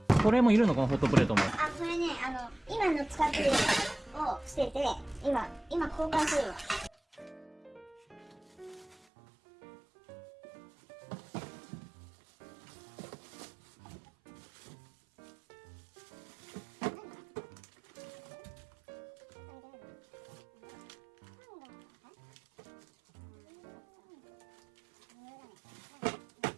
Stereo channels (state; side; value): drops out; left; at 9.0 s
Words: これもいるのこのホットプレートも。あ、これね、今の使ってるのを捨てて、今交換するわ。